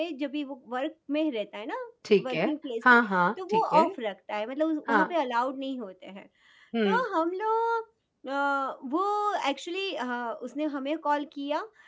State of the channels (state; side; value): identical; both; correlation 1.00